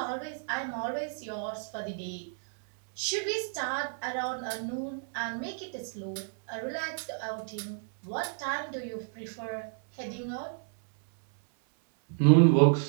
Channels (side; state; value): left; silent; 57 dB below the other